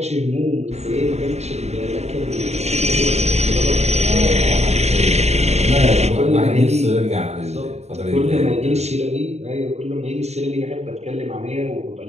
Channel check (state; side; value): late; left; 0.32 ms